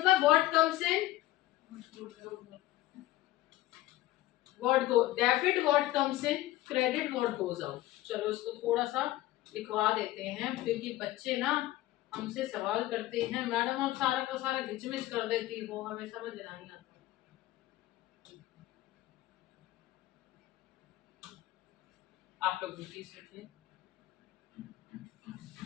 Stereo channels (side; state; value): right; quieter; 16.2 dB